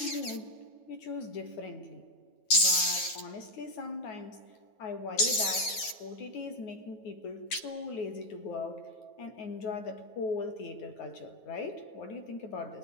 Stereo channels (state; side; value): late; right; 9.7 ms